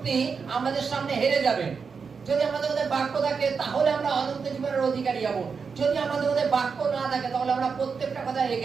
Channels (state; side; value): quieter; left; 5.6 dB